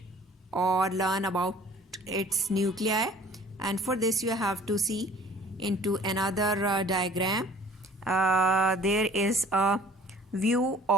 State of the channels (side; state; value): both; normal; correlation 0.51